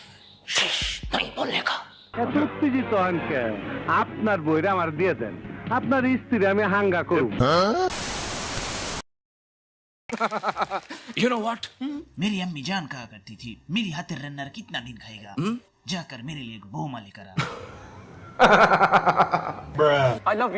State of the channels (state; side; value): identical; both; correlation 1.00